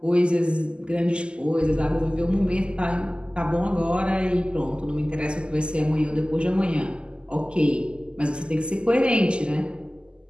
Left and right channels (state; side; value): late; left; 0.050 ms